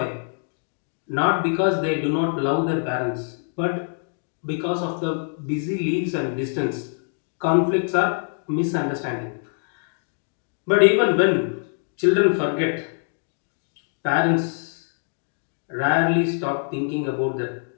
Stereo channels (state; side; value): silent; right; digital silence